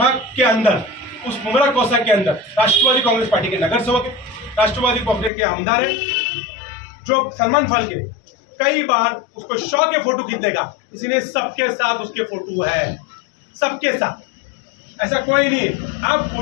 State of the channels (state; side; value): drops out; right; at 5.3 s